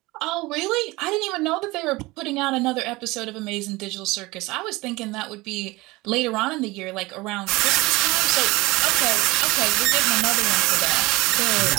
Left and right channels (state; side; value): quieter; left; 21.6 dB